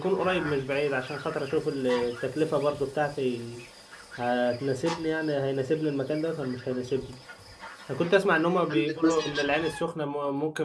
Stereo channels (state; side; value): identical; both; correlation 1.00